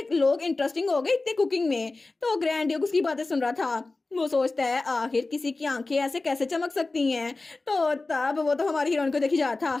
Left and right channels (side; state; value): right; quieter; 3.4 dB